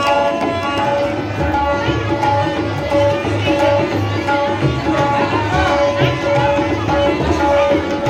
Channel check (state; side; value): identical; both; correlation 1.00